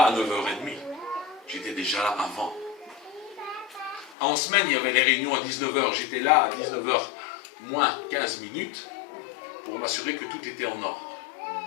à 9h30, j'étais déjà là avant. En semaine, il y avait les réunions à 19h, j'étais là à 19h moins 15 minutes, pour m'assurer que tout était en ordre.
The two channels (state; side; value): drops out; right; at 4.2 s